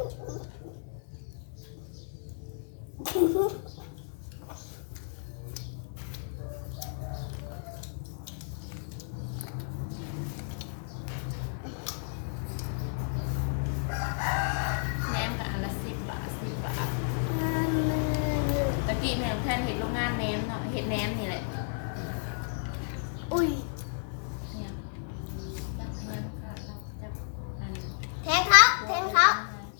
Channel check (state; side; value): silent; right; digital silence